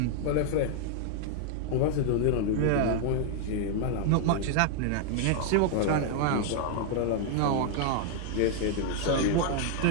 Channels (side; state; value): both; different; correlation 0.00